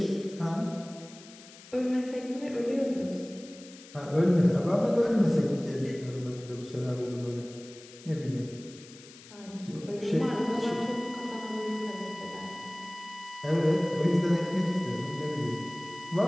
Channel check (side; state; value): left; noise; hiss, 19 dB below the sound